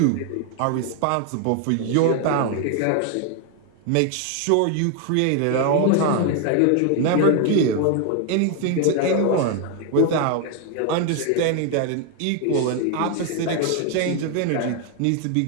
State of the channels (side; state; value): both; different; correlation 0.01